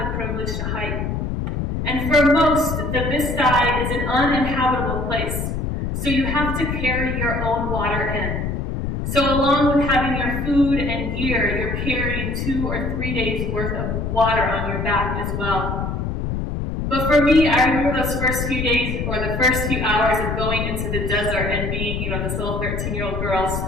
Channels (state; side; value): noise; left; rumble, 2 dB below the sound